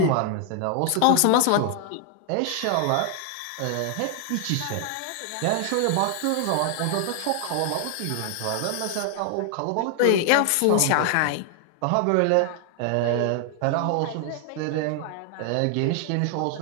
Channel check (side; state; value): both; different; correlation 0.00